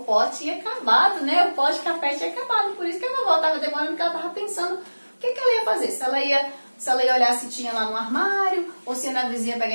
pó tinha acabado, né? O pó de café tinha acabado. Por isso que a vovó estava demorando, porque ela estava pensando o que ela ia fazer. Se ela ia olhar se tinha lá no armário, ou se ia na vizinha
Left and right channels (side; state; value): both; inverted; correlation -1.00